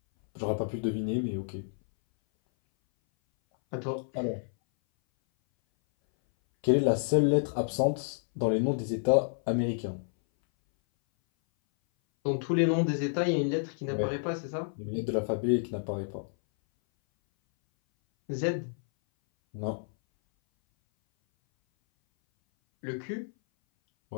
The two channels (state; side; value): silent; right; 58 dB below the other